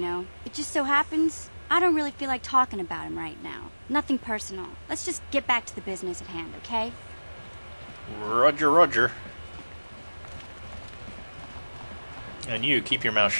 know. It just so happens I don't really feel like talking about him right now. Nothing personal. Let's just get back to the business at hand, okay? Roger, roger. And you, keep your mouth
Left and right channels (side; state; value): both; inverted; correlation -1.00